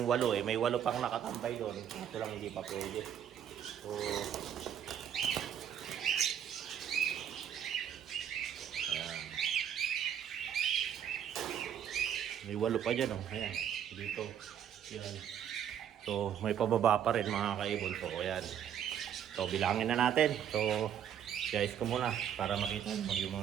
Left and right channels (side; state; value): left; quieter; 9.3 dB